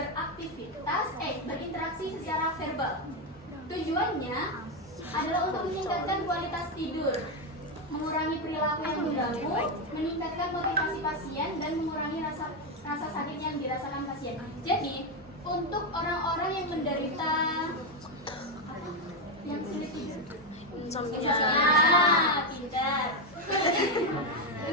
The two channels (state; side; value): normal; both; correlation 0.06